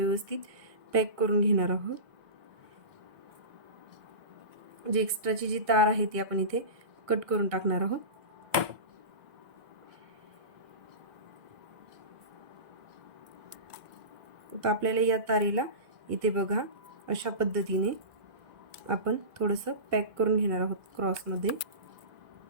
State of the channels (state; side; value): late; left; 1.7 ms